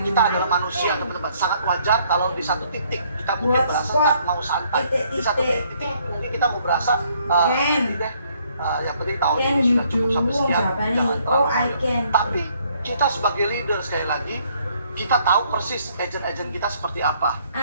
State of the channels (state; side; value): inverted; both; correlation -0.66